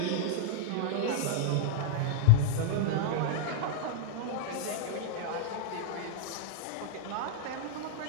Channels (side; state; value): both; different; correlation -0.01